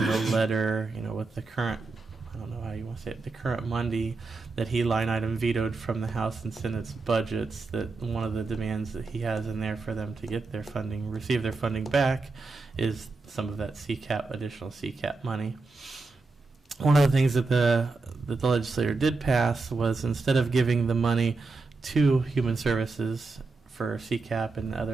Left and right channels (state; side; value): quieter; left; 3.8 dB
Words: letter, with the current, I don't know how you want to say it, the current Monday, that he line item vetoed from the House and Senate's budgets, that one of the demands that he has in there for them to get their funding, receive their funding back, is some of that additional CCAP money. One of the things that the legislature did pass was, instead of giving the money to Human Services for CCAP and